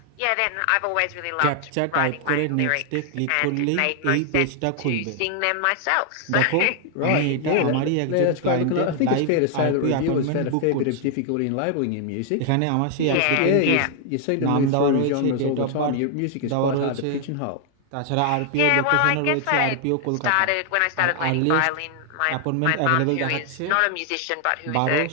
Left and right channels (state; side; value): different; both; correlation 0.00